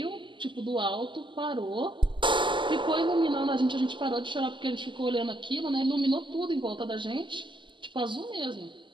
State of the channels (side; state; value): left; late; 0.24 ms